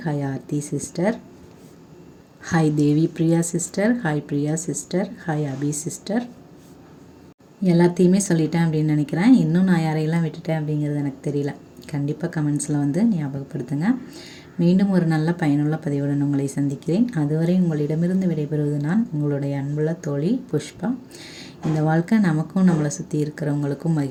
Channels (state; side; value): identical; both; correlation 1.00